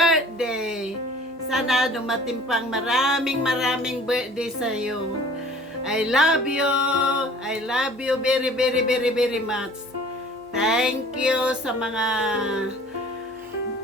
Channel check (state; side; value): normal; both; correlation 0.49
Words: Sana dumating pang maraming birthday sa iyo. I love you! I love you very much. Thank you sa mga